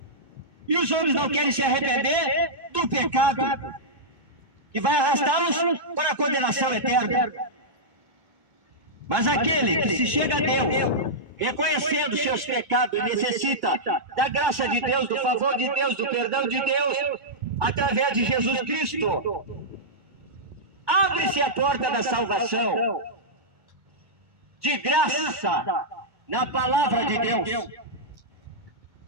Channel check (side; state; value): left; late; 2.2 ms